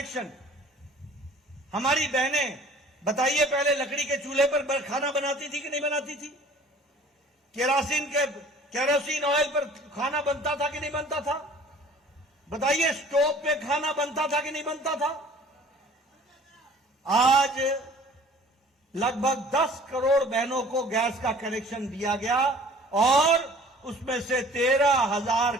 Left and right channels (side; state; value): both; normal; correlation 0.50